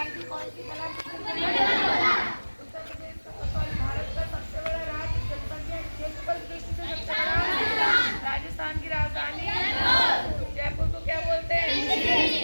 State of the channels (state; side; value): inverted; both; correlation -1.00